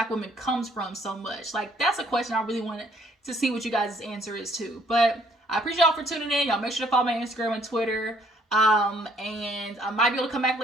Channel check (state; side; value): normal; both; correlation 0.64